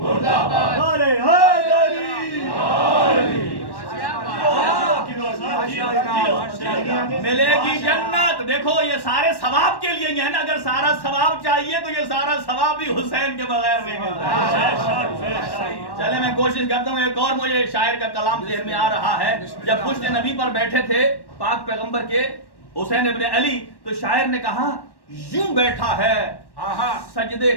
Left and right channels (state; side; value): late; right; 1.1 ms